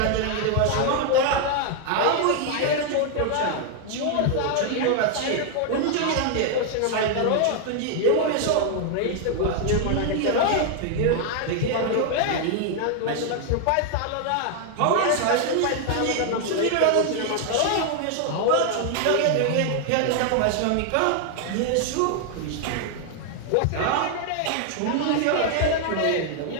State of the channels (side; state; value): both; different; correlation 0.00